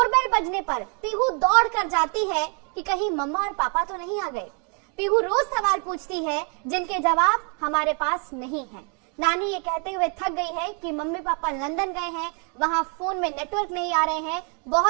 बजने पर पीहू दौड़ कर जाती है कि कहीं मम्मा और पापा तो नहीं आ गए। पीहू रोज सवाल पूछती है जिनके जवाब हमारे पास नहीं है। नानी ये कहते हुए थक गई है कि मम्मी पापा लंदन गए हैं, वहाँ फोन में नेटवर्क नहीं आ रहे हैं,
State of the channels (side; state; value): left; quieter; 37.8 dB